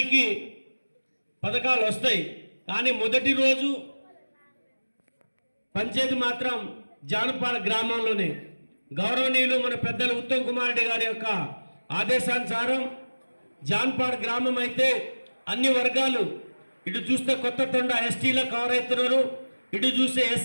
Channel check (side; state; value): both; inverted; correlation -1.00